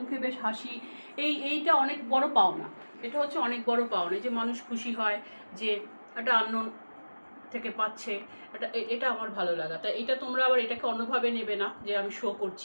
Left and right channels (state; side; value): inverted; both; correlation -1.00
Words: বেশ হাসি, এইটা অনেক বড় পাওনা। এটা হচ্ছে অনেক বড় পাওনা, যে মানুষ খুশি হয় যে একটা আননোন থেকে পাচ্ছে, এটা আমার ভালো লাগা। তাই এটা তোমরা আবার এটাকে অন্যভাবে নেবে না যে আমি শো